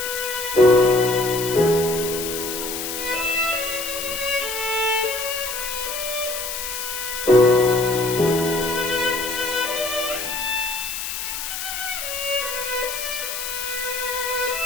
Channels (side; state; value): left; noise; hiss, 5 dB below the sound